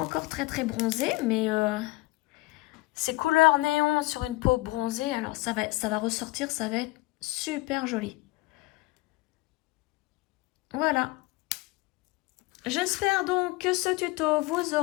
très bronzée, mais ces couleurs néon sur une peau bronzée, alors ça va ressortir, ça va être super joli. Voilà. J'espère donc que ce tuto vous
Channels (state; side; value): quieter; right; 21.9 dB